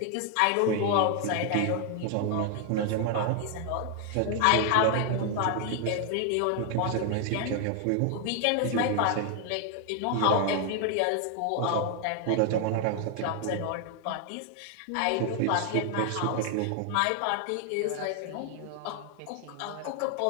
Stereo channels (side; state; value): both; different; correlation 0.00